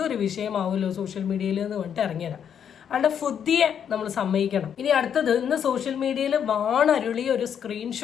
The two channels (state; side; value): quieter; right; 8.3 dB